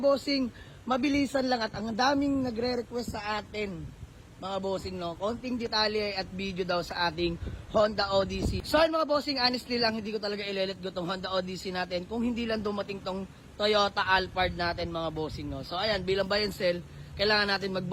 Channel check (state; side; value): identical; both; correlation 1.00